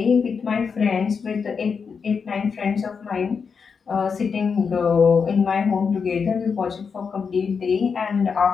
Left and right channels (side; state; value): right; quieter; 5.8 dB